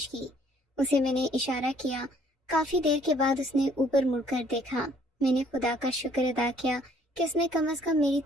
کی۔ اسے میں نے اشارہ کیا۔ کافی دیر کے بعد اس نے اوپر مڑ کر دیکھا۔ میں نے خدا کا شکر ادا کیا کہ اس نے کم از کم میری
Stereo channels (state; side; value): normal; both; correlation 0.61